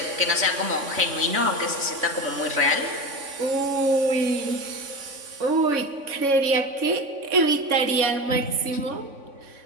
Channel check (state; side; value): late; left; 3.5 ms